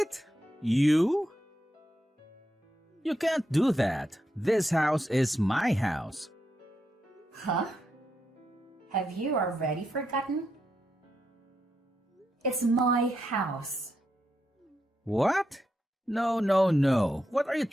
You? You can't do that. This house is my house. Huh? Have you already forgotten? It's my house. What? No. What are you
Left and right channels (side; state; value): both; normal; correlation 0.83